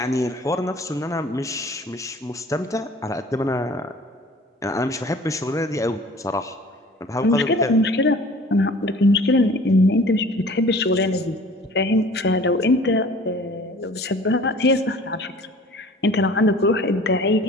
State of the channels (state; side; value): normal; both; correlation 0.47